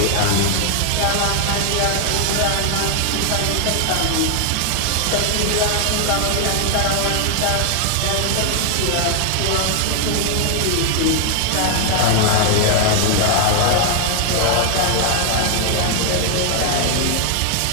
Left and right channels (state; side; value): different; both; correlation 0.00